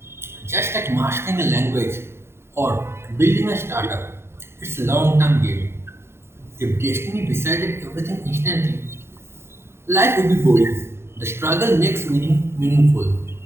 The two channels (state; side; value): late; left; 0.12 ms